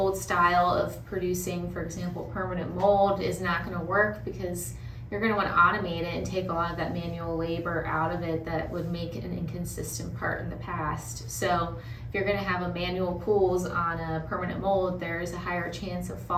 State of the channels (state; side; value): identical; both; correlation 1.00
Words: style of producing, for example, permanent mold is not going to work, because you're going to want to automate it and take a lot of that manual labor out of it that would make an inconsistent part in the past. So if you're going to have a manual pulls on a permanent mold, there's a higher chance of